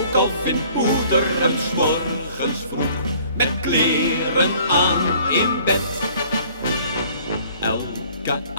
al vindt moeder hem 's morgens vroeg met kleren aan in bed. Elke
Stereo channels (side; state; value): both; inverted; correlation -0.55